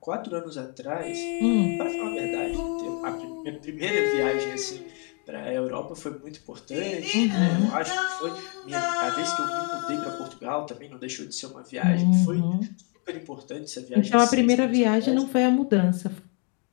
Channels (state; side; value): quieter; right; 37.2 dB